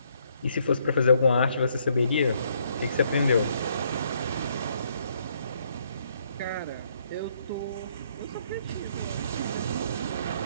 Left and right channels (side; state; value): both; inverted; correlation -0.69